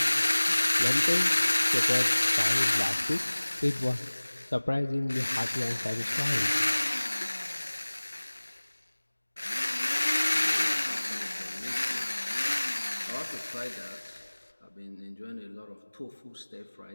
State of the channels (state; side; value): inverted; both; correlation -1.00